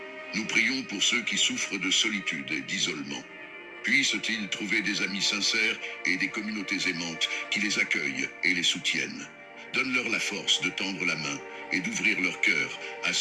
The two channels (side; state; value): both; identical; correlation 1.00